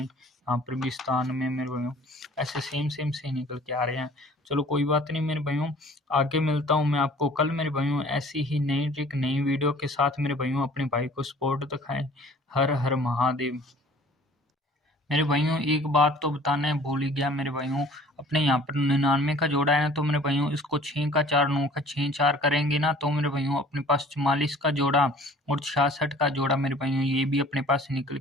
यहाँ पर भी स्थान में मेरे भाइयों ऐसे सेम सेम से निकल के आ रहे हैं। चलो कोई बात नहीं मेरे भाइयों, आगे मिलता हूँ मैं आपको कल मेरे भाइयों ऐसी ही नई ट्रिक नई वीडियो के साथ। मेरे भाइयों अपने भाई को सपोर्ट दिखाएं। हर हर महादेव। मेरे भाइयों एक बात तो बताना भूल ही गया मेरे भाइयों, अपने यहाँ पर 99 का जोड़ा है ना, तो मेरे भाइयों इसको 6 का 4 9 का 6 4 करेंगे ना, तो मेरे भाइयों अपने पास 44 का जोड़ा और 66 का जोड़ा मेरे भाइयों ये भी अपने पास निकल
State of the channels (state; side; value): normal; both; correlation 0.51